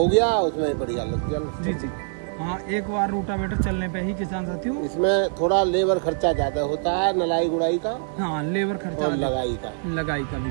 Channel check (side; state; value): left; silent; digital silence